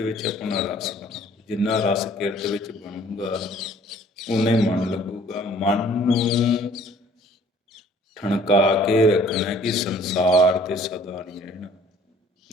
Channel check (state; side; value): normal; both; correlation 0.56